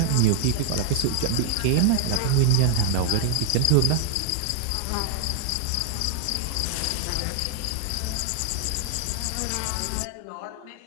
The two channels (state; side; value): different; both; correlation 0.00